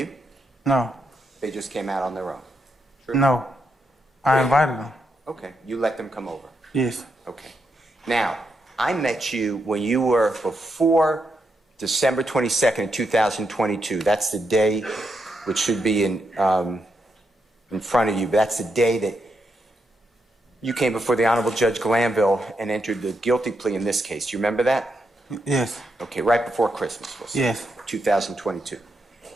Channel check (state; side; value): normal; both; correlation 0.82